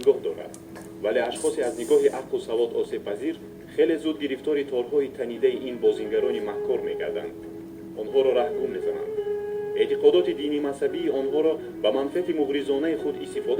дорад, вале ашхосе аз нигоҳи ақлу савод осебпазир хеле зуд гирифтори торҳои танидаи ин бозингарони маҳкор мегарданд. онҳоро раҳгум мезананд. эътиқодоти дини мазҳабии онҳоро ба манфиати муғризонаи худ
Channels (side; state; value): both; identical; correlation 1.00